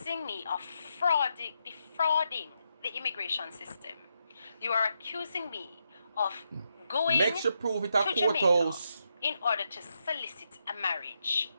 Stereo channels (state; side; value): inverted; both; correlation -0.82